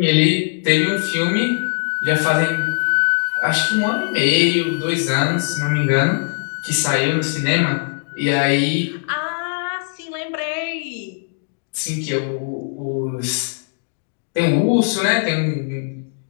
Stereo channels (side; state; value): right; silent; digital silence